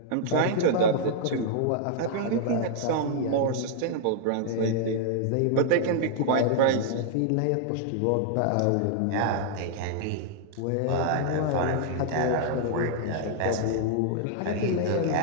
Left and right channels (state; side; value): different; both; correlation -0.01